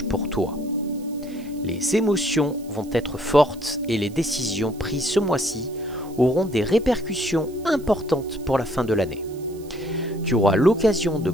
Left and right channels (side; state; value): right; noise; hiss, 24 dB below the sound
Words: pour toi. Les émotions vont être fortes et les décisions prises ce mois-ci auront des répercussions importantes pour la fin de l'année. Tu auras l'occasion de